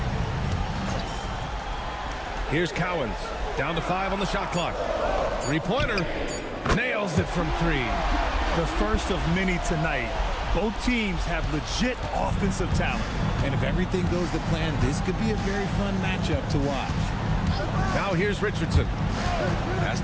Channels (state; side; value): identical; both; correlation 1.00